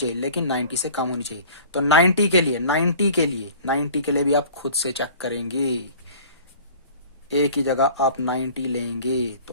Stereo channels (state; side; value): inverted; both; correlation -0.45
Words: लेकिन 90 से कम होनी चाहिए। तो 90 के लिए भी आप खुद से चेक करेंगे, ए की जगह आप 90 लेंगे,